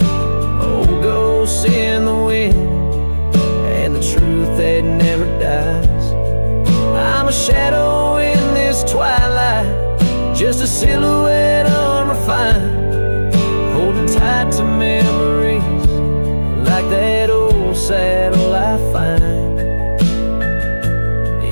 Old ghosts in the wind and the truth that never dies. I'm a shadow in this twilight, just a silhouette unrefined, holding tight to memories like that old saddle I find.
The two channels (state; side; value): inverted; both; correlation -1.00